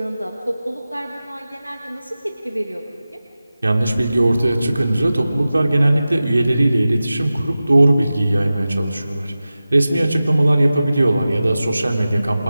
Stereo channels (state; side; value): inverted; both; correlation -0.95